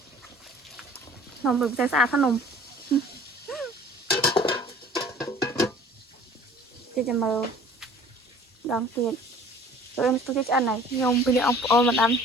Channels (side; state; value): both; normal; correlation 0.49